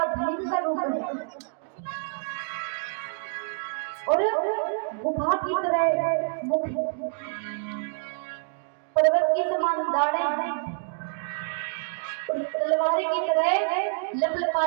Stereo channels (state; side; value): silent; left; digital silence